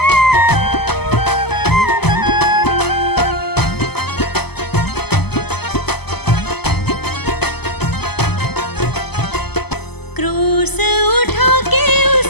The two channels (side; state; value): right; late; 0.98 ms